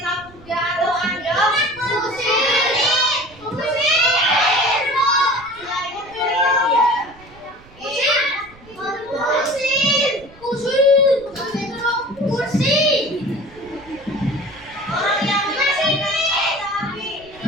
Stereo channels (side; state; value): right; noise; rumble, 24 dB below the sound